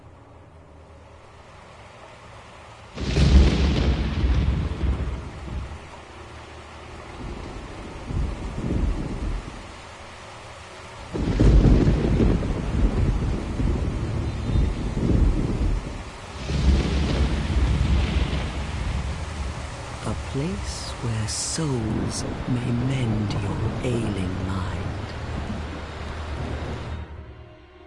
A place where souls may mend your ailing mind.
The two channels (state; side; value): identical; both; correlation 1.00